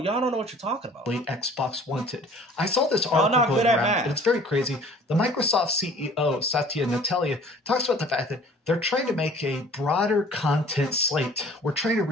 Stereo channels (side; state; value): both; normal; correlation 0.50